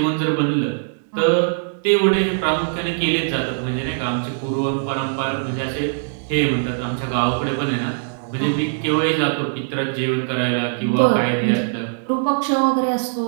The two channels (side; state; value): left; silent; digital silence